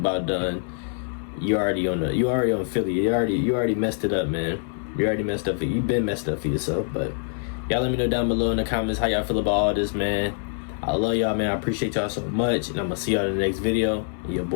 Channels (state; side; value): silent; right; 62 dB below the other